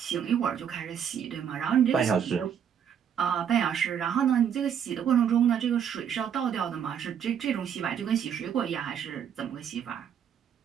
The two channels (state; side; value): quieter; left; 8.3 dB